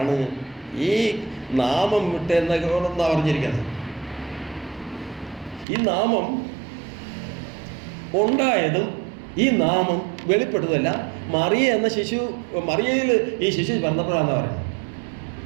ഈ നാമം വിട്ടെന്നാണ് പറഞ്ഞിരിക്കുന്നത്. ഈ നാമം ഉണ്ടായതും ഈ നാമം വെളിപ്പെട്ടതല്ല മറിയ എന്ന മറിയയിൽ ഈ ശിശു പിറന്നപ്പോഴാണെന്ന് പറയുന്നത്.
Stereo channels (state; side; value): drops out; left; at 5.7 s